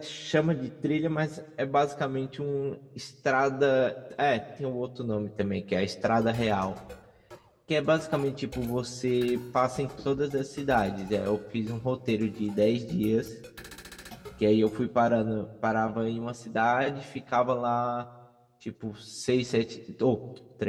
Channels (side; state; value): both; identical; correlation 1.00